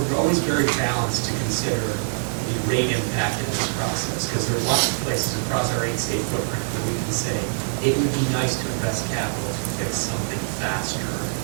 always very balanced to consider the rate impact in this process, because there are lots of places across our 8-state footprint where we can say it would be nice to invest capital to fix something faster,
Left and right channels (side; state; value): left; silent; digital silence